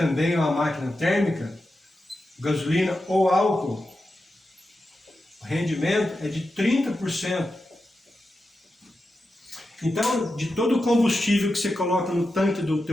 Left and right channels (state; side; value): normal; both; correlation 0.90